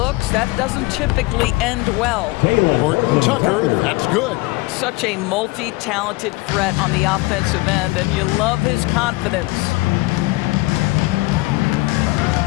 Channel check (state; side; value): quieter; right; 22.8 dB